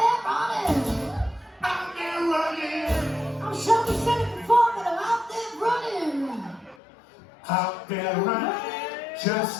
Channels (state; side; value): drops out; right; at 6.8 s